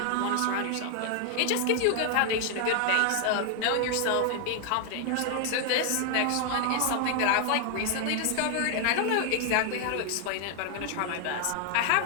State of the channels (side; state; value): both; different; correlation 0.00